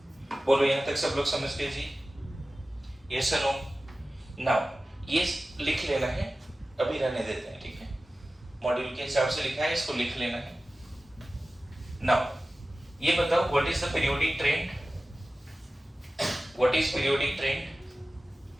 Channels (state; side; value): normal; both; correlation 0.96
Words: बोलो यहां तक सब लोग समझ गए जी? यस और नो? नाउ ये लिख लेना है, अभी रहने देते हैं, ठीक है? मॉड्यूल के हिसाब से लिखा है, इसको लिख लेना है। नाउ ये बताओ, what is the periodic trend? What is periodic trend?